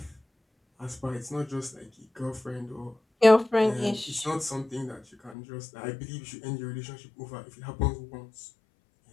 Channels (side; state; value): right; drops out; at 5.4 s